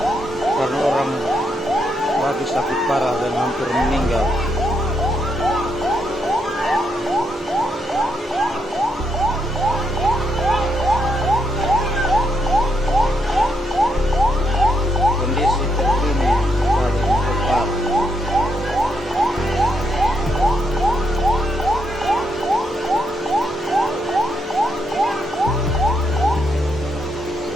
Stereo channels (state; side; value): normal; both; correlation 0.78